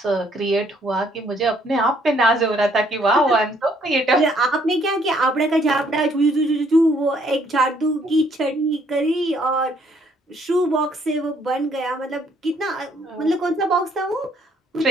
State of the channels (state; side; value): normal; both; correlation 0.66